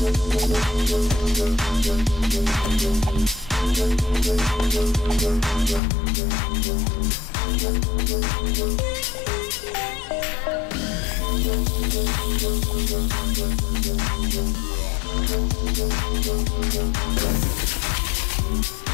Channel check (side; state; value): right; drops out; at 5.8 s